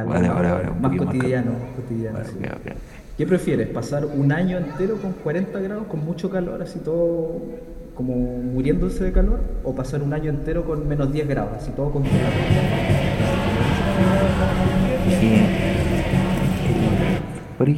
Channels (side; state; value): both; identical; correlation 1.00